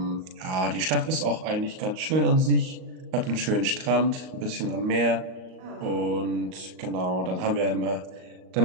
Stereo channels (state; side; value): late; left; 38 ms